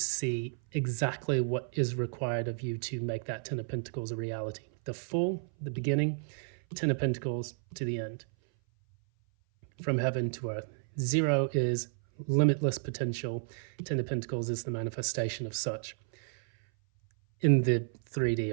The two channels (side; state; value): left; silent; 56 dB below the other